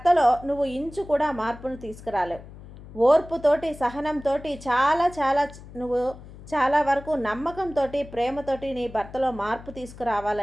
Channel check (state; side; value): noise; left; hum, 17 dB below the sound